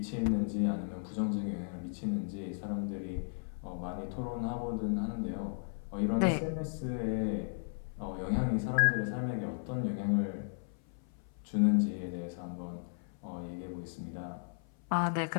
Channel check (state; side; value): silent; right; 54 dB below the other